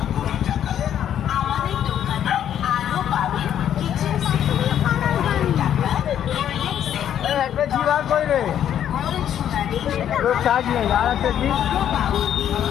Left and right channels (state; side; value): quieter; right; 10.1 dB